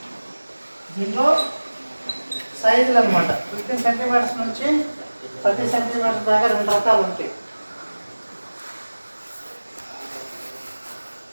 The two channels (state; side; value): inverted; both; correlation -1.00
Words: దీంట్లో సైజులు అనమాట 15 centimetres నుంచి 30 centimetres దాకా 2 రకాలు ఉంటాయి.